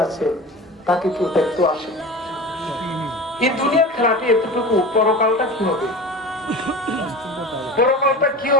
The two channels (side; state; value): both; normal; correlation 0.33